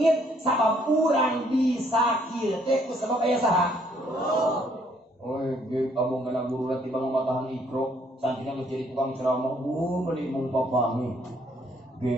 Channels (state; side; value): normal; both; correlation 0.66